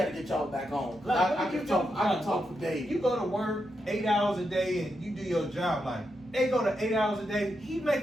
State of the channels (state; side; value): normal; both; correlation 0.84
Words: y'all back on. Like, I can talk for days. You go to work 8 hours a day and you do your job. Like, they go to 8 hours a day. He